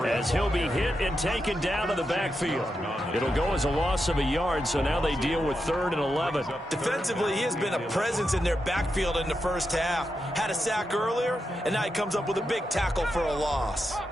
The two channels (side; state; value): both; normal; correlation 0.86